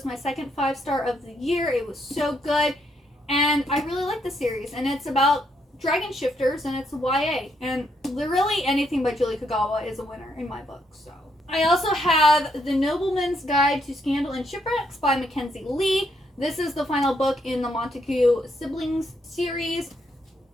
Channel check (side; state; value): both; normal; correlation 0.75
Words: my second 5-star of the year. It was so good, and I really like the series, and it's about dragon shifters, and it's YA, and literally anything by Julie Kagawa is a winner in my book. So I also have The Nobleman's Guide to Scandal and Shipwrecks by Mackenzie Lee. This is the final book in the Montague siblings series.